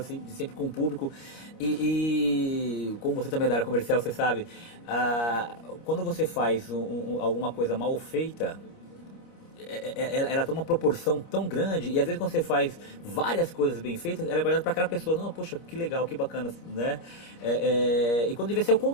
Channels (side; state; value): right; late; 25 ms